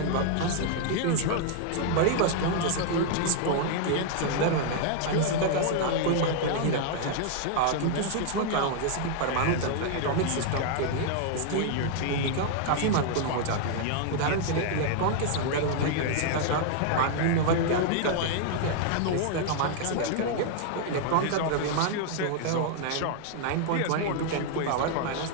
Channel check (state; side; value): different; both; correlation 0.00